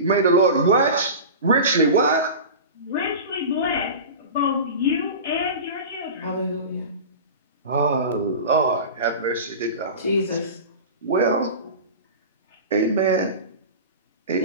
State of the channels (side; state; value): both; inverted; correlation -0.31